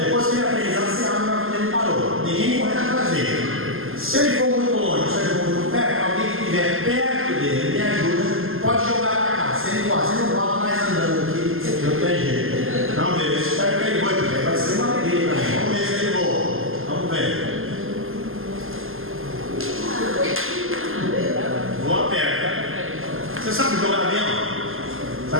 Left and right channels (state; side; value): late; left; 0.60 ms